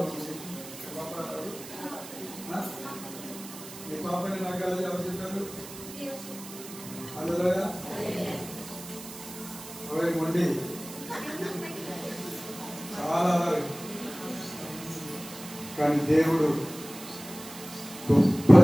పాపని నాకు అది ఎవరు చెప్పారు? అందులో మొండి చాలా కానీ దేవుడు గొప్ప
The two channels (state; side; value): noise; right; hiss, 14 dB below the sound